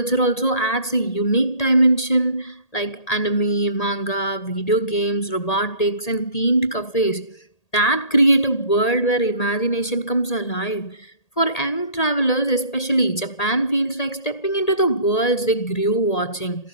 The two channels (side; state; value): right; late; 1.8 ms